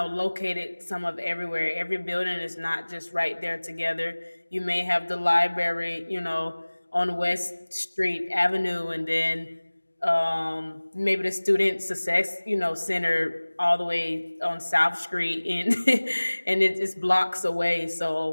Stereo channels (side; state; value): both; inverted; correlation -1.00